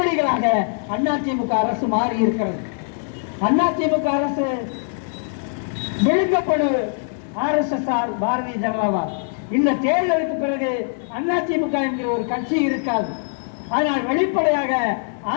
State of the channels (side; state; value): right; silent; digital silence